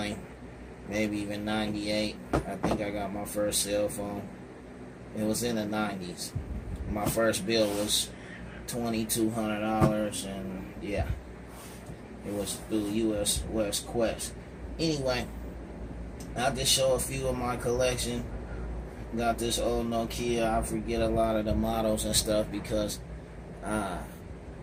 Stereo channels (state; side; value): identical; both; correlation 1.00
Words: maybe even 98. I think I got my first cell phone. It was in the 90s. My first bill was $2,200, and yeah, it was through US West Quest. Anyway, I'll just show a few of my collection. Got this old Nokia. I forget a lot of the models and stuff because I